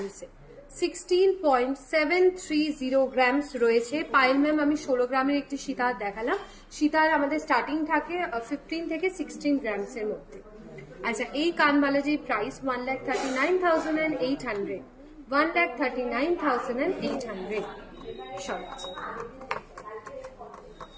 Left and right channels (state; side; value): identical; both; correlation 1.00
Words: 16.730 গ্রামস রয়েছে। পায়েল ম্যাম আমি 16 গ্রামের একটি সীতাহার দেখালাম, সীতাহার আমাদের স্টার্টিং থাকে 15 থেকে 16 গ্রামসের মধ্যে। আচ্ছা এই কানবালাজির প্রাইস 1,39,800, 1,39,800 সব।